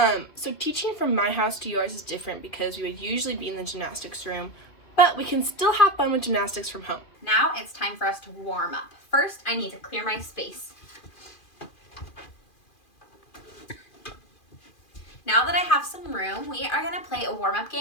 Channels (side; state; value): right; late; 2.5 ms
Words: teaching from my house to yours is different because we would usually be in the gymnastics room, but we can still have fun with gymnastics from home. Now it's time for us to warm up. First, I need to clear my space. Now that I have some room, we are going to play a warm-up